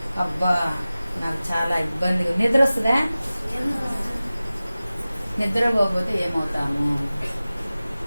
అబ్బా నాకు చాలా ఇబ్బందిగా, నిద్ర వస్తుందా? నిద్రపోతే ఏమవుతాము?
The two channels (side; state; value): both; inverted; correlation -0.97